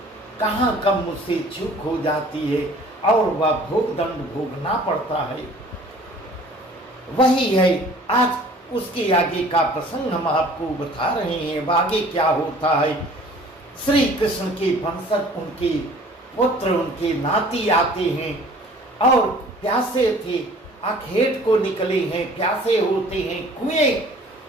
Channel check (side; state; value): both; normal; correlation 0.50